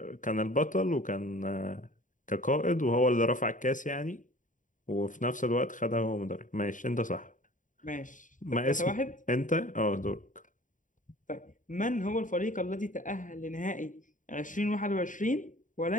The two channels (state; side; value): late; right; 0.38 ms